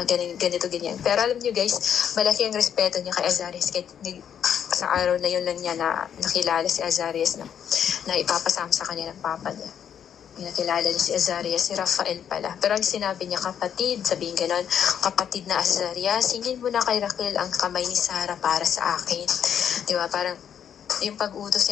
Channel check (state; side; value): quieter; right; 8.7 dB